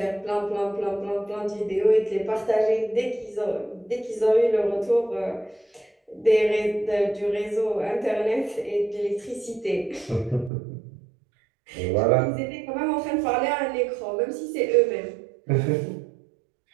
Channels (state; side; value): drops out; left; at 10.5 s